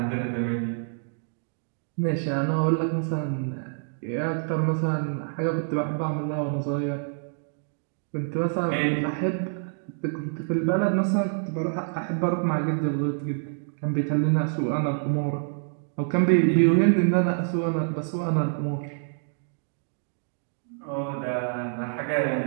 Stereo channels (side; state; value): left; silent; digital silence